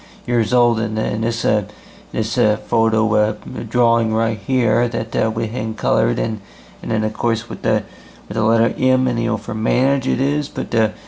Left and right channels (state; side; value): identical; both; correlation 1.00